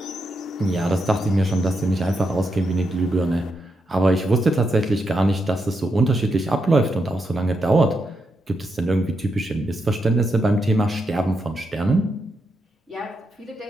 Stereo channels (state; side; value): normal; both; correlation 0.83